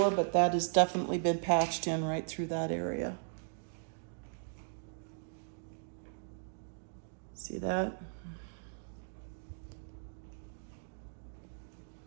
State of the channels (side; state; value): left; silent; digital silence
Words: but that has definitely been patched in right through that area. See that?